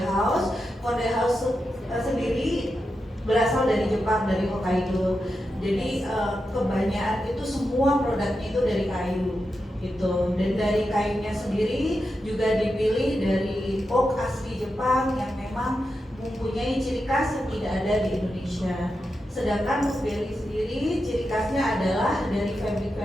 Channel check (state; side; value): normal; both; correlation 0.88